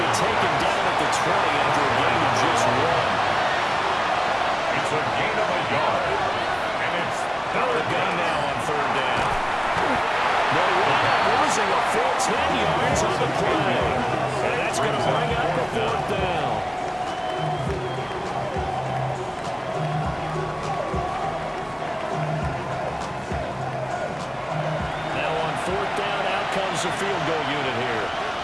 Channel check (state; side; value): identical; both; correlation 1.00